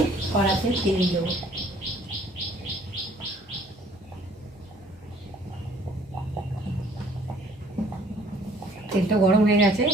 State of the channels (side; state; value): both; normal; correlation 0.58